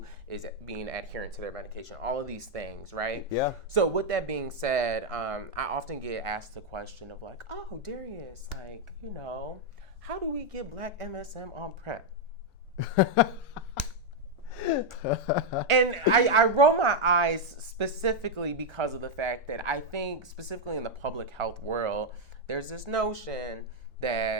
is being adherent to their medication. All of these things, right? Yeah. So with that being said, I often get asked the question of like, oh, Derrius, like, you know, how do we get Black MSM on PrEP? And I roll my eyes specifically because of the fact that I think specifically in the public health world, there's this notion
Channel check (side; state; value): both; normal; correlation 0.00